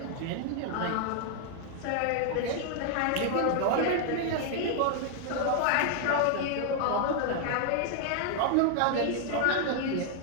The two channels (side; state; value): both; different; correlation 0.00